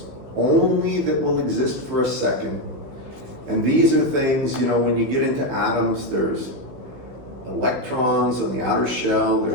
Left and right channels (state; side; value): late; left; 16 ms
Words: only that will exist for a second. And these are things, you know, when you get into atoms, there's electrons on the outer shell,